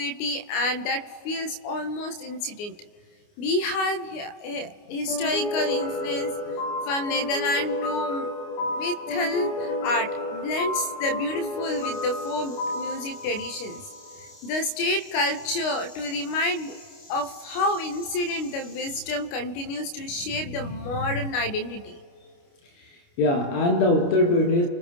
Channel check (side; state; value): right; late; 29 ms